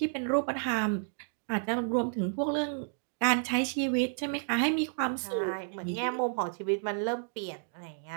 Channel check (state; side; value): silent; left; digital silence